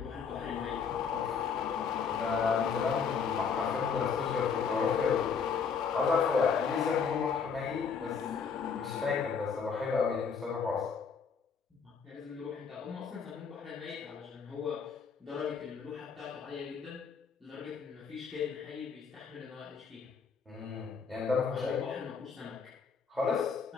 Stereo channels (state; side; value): quieter; right; 6.1 dB